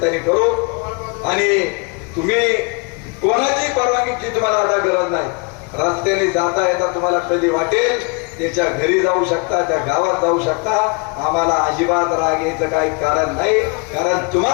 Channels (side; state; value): right; quieter; 31.9 dB